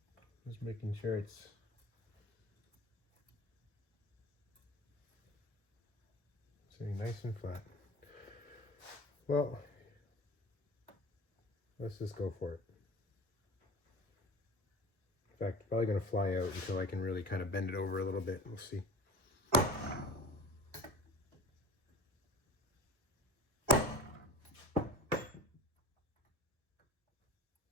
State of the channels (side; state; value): both; normal; correlation 0.38